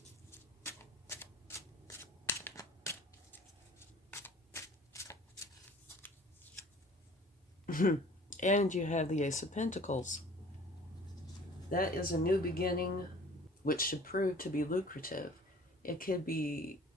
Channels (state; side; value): normal; both; correlation 0.49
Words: And you have the Ace of Pentacles. That is a new beginning, which should prove to be lucrative. It could be